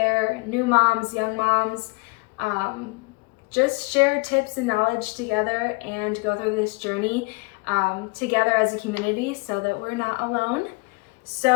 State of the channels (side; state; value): right; quieter; 28.0 dB